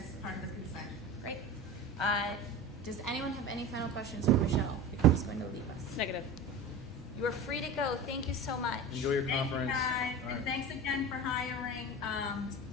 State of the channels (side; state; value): both; normal; correlation 0.31